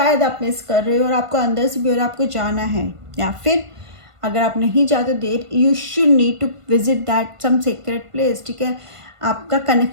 आप मिस कर रहे हो और आपको अंदर से भी और आपको जाना है। या फिर अगर आप नहीं जाते there you should need to visit that some secret place, ठीक है। आपका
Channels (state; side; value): late; left; 1.5 ms